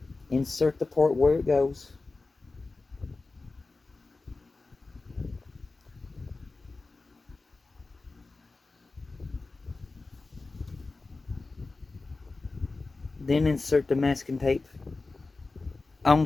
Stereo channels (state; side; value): quieter; right; 3.6 dB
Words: Insert the part where it goes. Then insert the masking tape